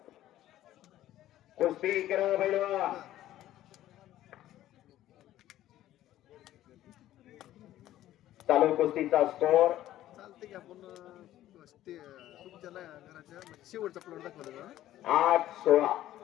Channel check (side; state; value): right; quieter; 13.6 dB